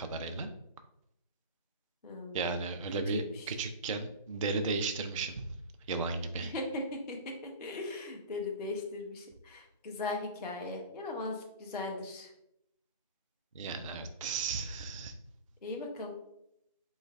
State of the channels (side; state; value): both; inverted; correlation -0.31